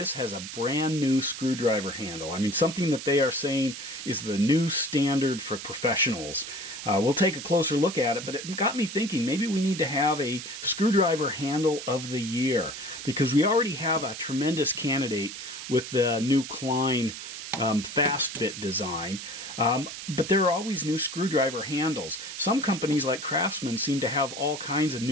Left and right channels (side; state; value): right; noise; hiss, 9 dB below the sound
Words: has a brand new screwdriver handle. I mean, something that they are saying is the new standard for professionals. We'll take a closer look at it, but it got me thinking maybe we need to have a screwdriver handle of the year, because we already have a tremendous candidate with the new Klein fast bit design. But there are always new screwdriver handles. Some companies like Craftsman seem to have all kinds of